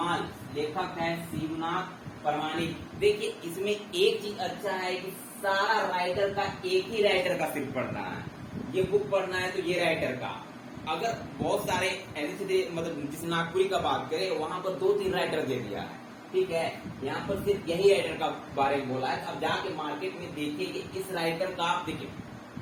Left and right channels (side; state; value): both; identical; correlation 1.00